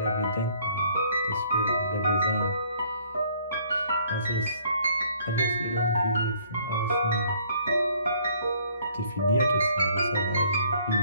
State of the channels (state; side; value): inverted; both; correlation -0.61